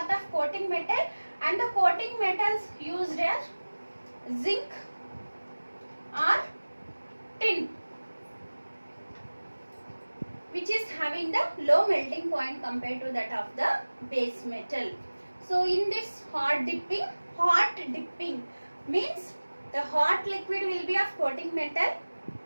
of coating metal, and the coating metals used are zinc or tin, which is having the low melting point compared to that of the base metal. So in this hot dipping means the hot liquid will be of coating metal,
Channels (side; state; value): both; inverted; correlation -1.00